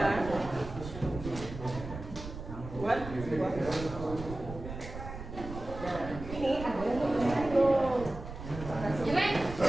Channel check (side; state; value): right; noise; rumble, 10 dB below the sound